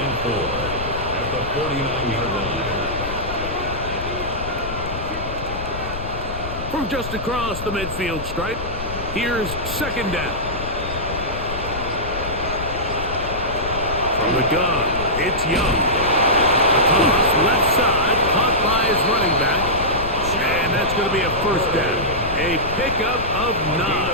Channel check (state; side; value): noise; left; rumble, 8 dB below the sound